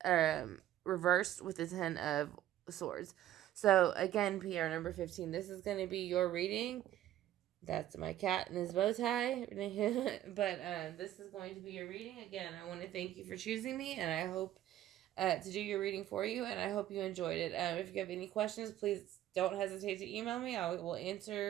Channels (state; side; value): quieter; left; 12.9 dB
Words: reversed with the Ten of Swords. So again, PR number 15, this is going to be your reading. That's my cat and his bow tie. But this is going to be your reading. Again, I want to thank you for choosing me, and I hope to do your reading for you, and I hope you enjoyed it. If you have any questions, please don't hesitate to email me. I will